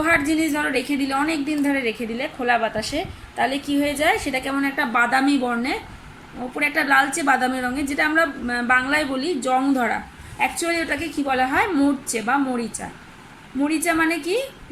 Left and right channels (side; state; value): both; identical; correlation 1.00